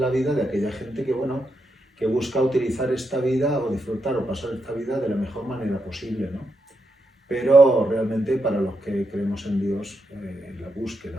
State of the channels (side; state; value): both; normal; correlation 0.83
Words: vida de aquella gente que, bueno, que busca utilizar esta vida o disfrutar o pasar esta vida de la mejor manera posible, ¿no? Pero realmente para los que creemos en Dios, la